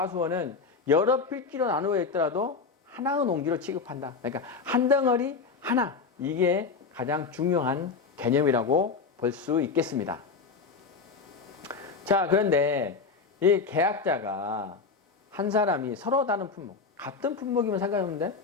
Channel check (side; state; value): right; quieter; 4.9 dB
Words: 여러 필지로 나누어 있더라도 하나의 농지로 취급한다. 그러니까 한 덩어리 하나, 이게 가장 중요한 개념이라고 볼 수 있겠습니다. 자, 그런데 이 계약자가 한 사람이 서로 다른 품목, 같은 품목이면 상관없는데